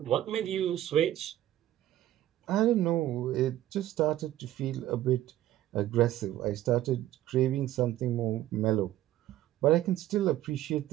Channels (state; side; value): quieter; left; 13.7 dB